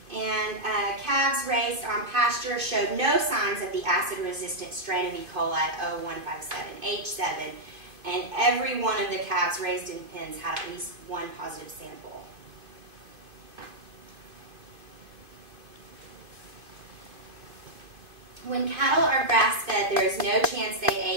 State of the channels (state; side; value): late; left; 2.5 ms